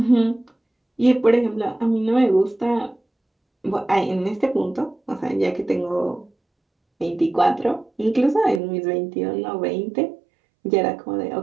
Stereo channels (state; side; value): drops out; left; at 8.6 s